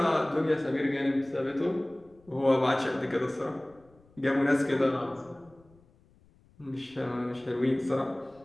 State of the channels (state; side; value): noise; left; rumble, 30 dB below the sound